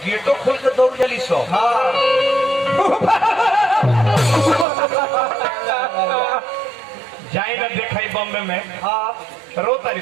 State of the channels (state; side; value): drops out; left; at 4.7 s